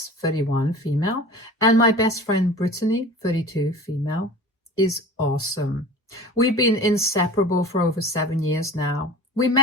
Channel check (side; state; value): both; normal; correlation 0.39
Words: 31, female, and my best friend Brittany, 32, female, is awesome. We've been inseparable for over 7 years now. We